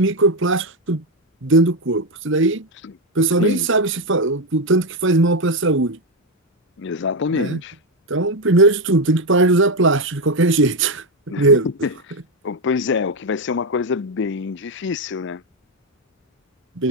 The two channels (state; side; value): normal; both; correlation 0.07